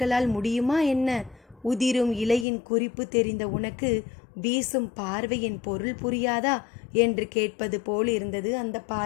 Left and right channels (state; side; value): drops out; right; at 2.5 s